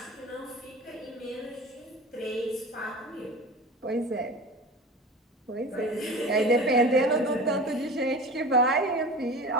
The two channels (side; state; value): both; normal; correlation 0.35